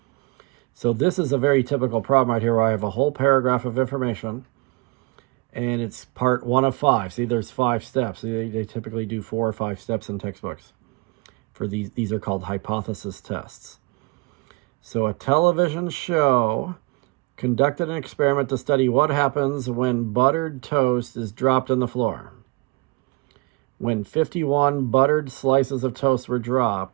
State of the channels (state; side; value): quieter; left; 26.7 dB